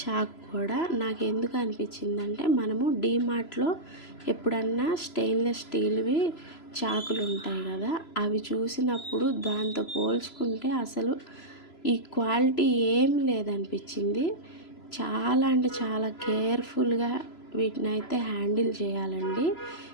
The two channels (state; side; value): late; right; 3.0 ms